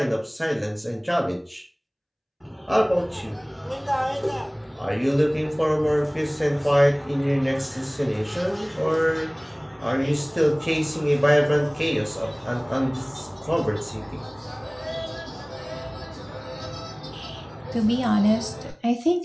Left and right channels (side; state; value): both; identical; correlation 1.00